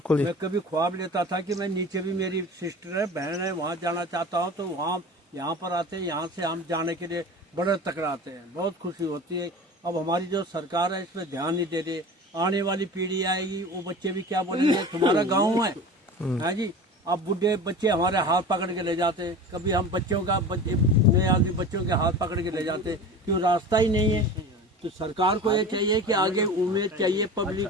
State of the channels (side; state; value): both; normal; correlation 0.35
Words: जी। मैं कभी ख्वाब लेता था कि मैं नीचे भी, मेरी सिस्टर है, बहन है, वहाँ जाना चाहता हूँ, तो वहाँ यहाँ पर आते हैं। यहाँ से हम जाने के लिए बड़े तकराते हैं, बहुत खुशी होती है। अब हमारी जो सरकार है इसमें ध्यान नहीं दे रही। आने वाली पीढ़ी आएगी, वो बच्चे भी क्या बोलेंगे, तुम्हारा गाँव है जी। अब बुढ़े बच्चे हमारे हाथ पकड़ के ले जाते हैं। कभी हम बच्चों का नए आदमी बच्चों के हाथ पकड़ के ले जाते हैं, क्यों रास्ता ही नहीं है। तो सरकार को ये चाहिए कि आगे उम्मीद चाहिए पब्लिक